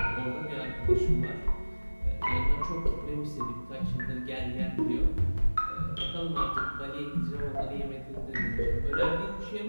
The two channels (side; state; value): both; inverted; correlation -1.00